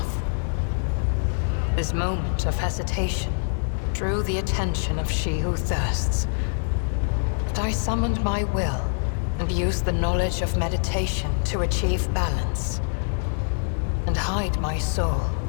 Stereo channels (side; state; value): right; silent; digital silence